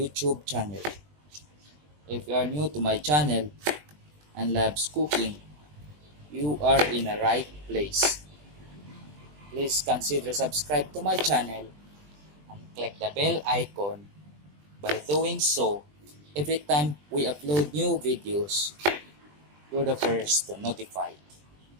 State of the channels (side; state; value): left; late; 20 ms